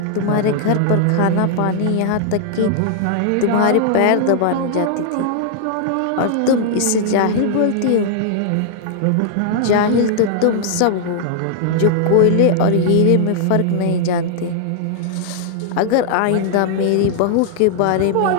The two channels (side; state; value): both; different; correlation -0.01